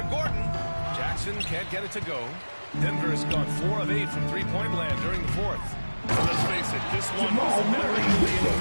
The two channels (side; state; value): both; inverted; correlation -1.00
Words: Gordon. Jackson can't get it to go. Denver has gone 4 of 8 from three-point land during the fourth. Let's face it, this one was never going to be in